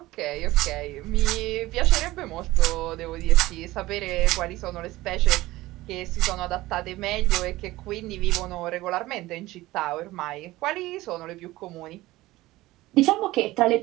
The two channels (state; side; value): quieter; left; 18.1 dB